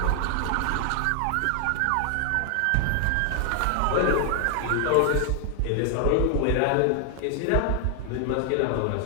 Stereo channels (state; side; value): different; both; correlation 0.00